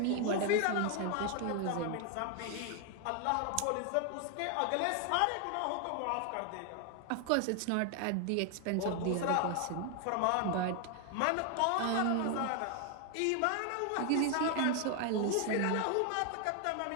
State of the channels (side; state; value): both; different; correlation 0.00